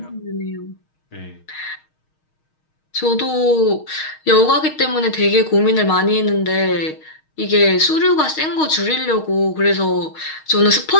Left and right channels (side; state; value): right; late; 6.4 ms